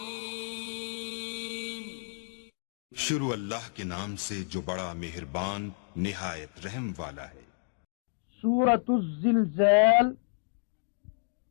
शुरू अल्लाह के नाम से जो बड़ा मेहरबान निहायत रहम वाला है। सूरतुज़्ज़िलज़ाल।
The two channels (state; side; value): silent; right; digital silence